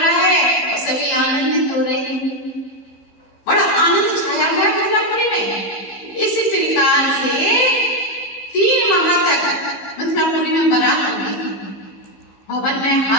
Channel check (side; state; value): right; late; 15 ms